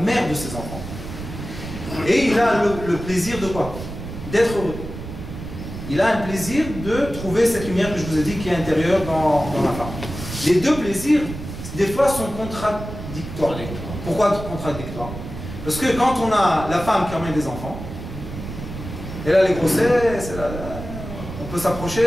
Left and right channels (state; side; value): noise; right; rumble, 9 dB below the sound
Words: de ses enfants. Et il a le plaisir de quoi? D'être heureux. Il a un plaisir de trouver cette lumière que je vous ai dit qui est intérieure dans la femme. Les 2 plaisirs, des fois, sont contradictoires. Pourquoi contradictoires? Parce que quand on a la femme qui emmène des enfants, elle a les grossesses, on peut